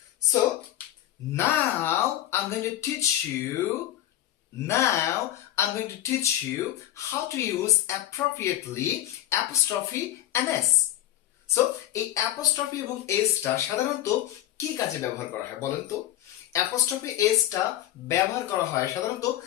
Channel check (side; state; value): right; quieter; 13.6 dB